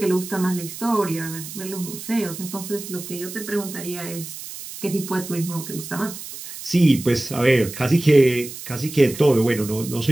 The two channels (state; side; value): noise; right; hiss, 11 dB below the sound